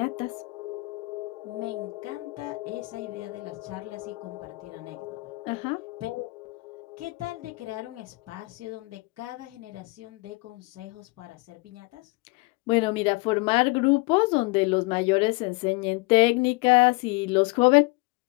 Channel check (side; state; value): right; quieter; 25.7 dB